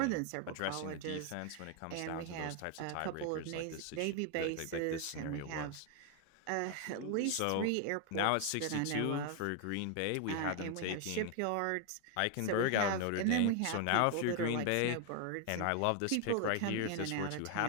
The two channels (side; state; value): both; different; correlation 0.01